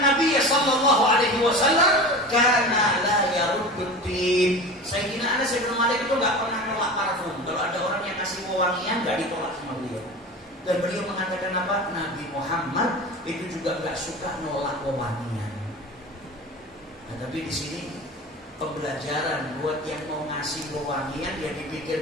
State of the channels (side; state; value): both; normal; correlation 0.33